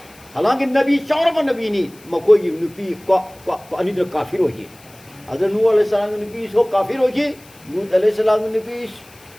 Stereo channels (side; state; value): left; noise; hiss, 25 dB below the sound